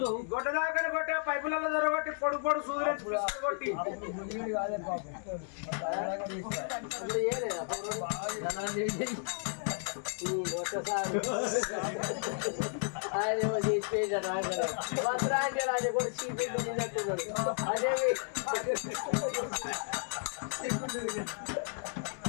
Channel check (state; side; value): silent; right; 56 dB below the other